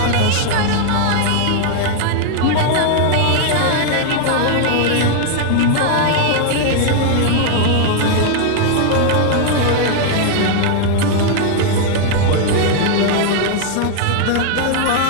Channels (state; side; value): different; both; correlation 0.00